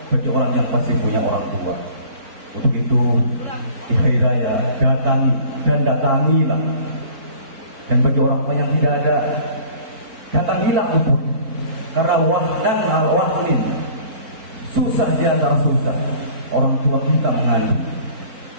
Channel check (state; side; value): late; left; 4.5 ms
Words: bagi orang yang masih punya orang tua. Untuk itu di hari raya datang dan datangilah. Dan bagi orang yang tidak ada, datangilah untuk, karena wahdan al-wahdin, susah di antara susah orang tua kita mengandung.